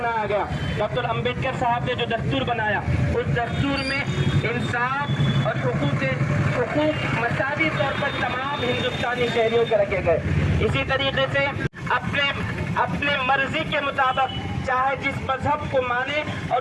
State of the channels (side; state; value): both; identical; correlation 1.00